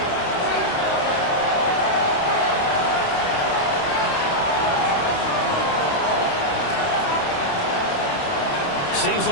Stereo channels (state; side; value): late; right; 28 ms